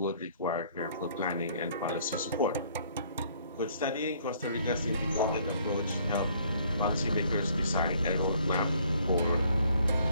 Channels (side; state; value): both; inverted; correlation -0.62